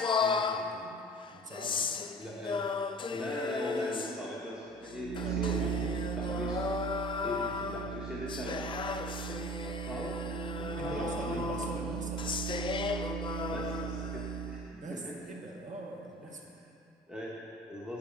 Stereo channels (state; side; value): normal; both; correlation 0.43